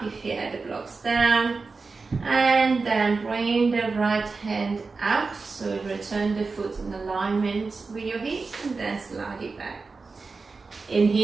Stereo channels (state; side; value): quieter; left; 4.2 dB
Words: if you had the blocks down, and then bring the right hand out, so return the foot in alignment with your hips and then slide it back. In